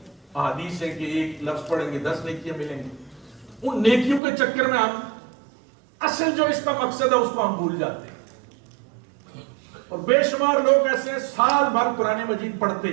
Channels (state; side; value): drops out; left; at 4.2 s